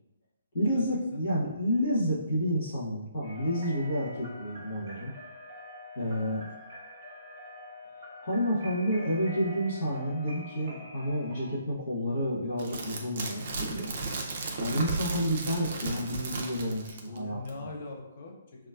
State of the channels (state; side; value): inverted; both; correlation -0.67